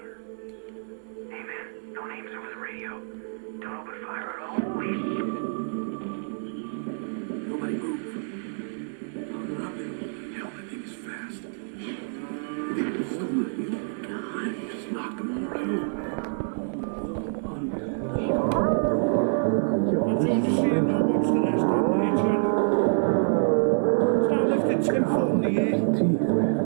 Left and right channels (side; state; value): left; silent; 60 dB below the other